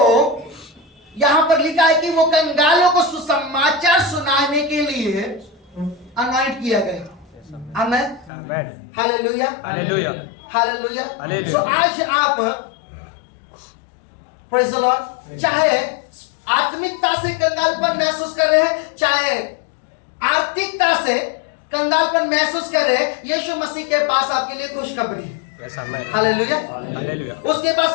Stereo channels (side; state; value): right; drops out; at 8.3 s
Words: यहां पर लिखा है कि वो कंगालों को सुसमाचार सुनाने के लिए अनॉइंट किया गया। आमेन। Hallelujah, hallelujah. सो आज आप प्रेज़ द लॉर्ड, चाहे आत्मिकता से कंगालपन महसूस कर रहे हैं, चाहे आर्थिकता से कंगालपन महसूस कर रहे हैं, यीशु मसीह के पास आपके लिए खुशखबरी है। हालेलुया। उसके पास